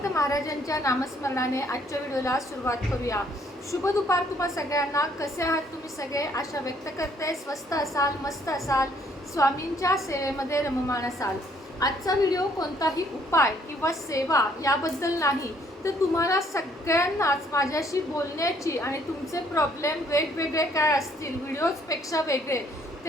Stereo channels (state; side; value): normal; both; correlation 0.65